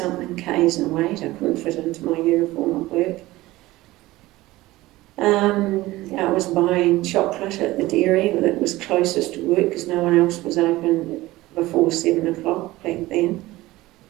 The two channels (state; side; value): quieter; left; 18.3 dB